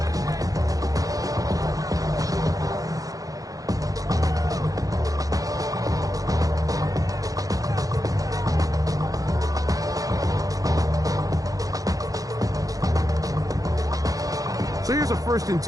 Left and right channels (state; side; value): late; left; 0.17 ms